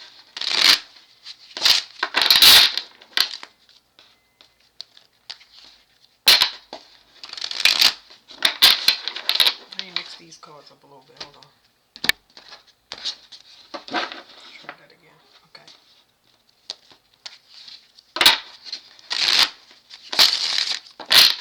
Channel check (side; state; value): both; identical; correlation 1.00